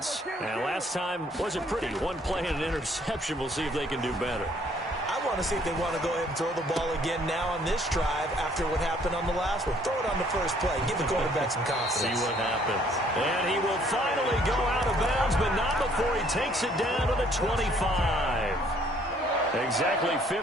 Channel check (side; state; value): both; normal; correlation 0.62